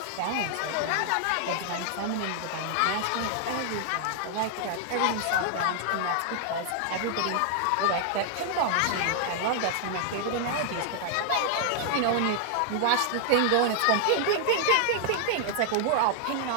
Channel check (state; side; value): different; both; correlation -0.01